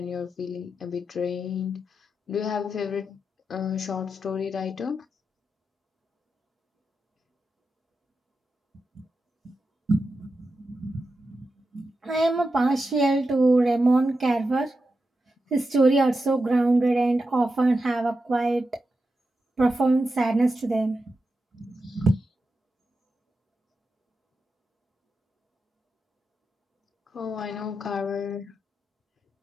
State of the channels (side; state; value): both; normal; correlation 0.89